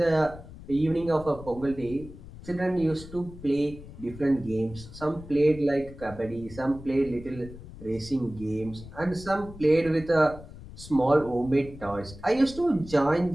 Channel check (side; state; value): left; noise; rumble, 16 dB below the sound